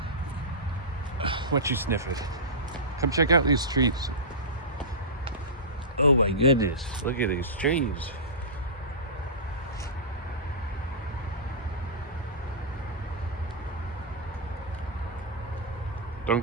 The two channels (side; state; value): both; normal; correlation -0.18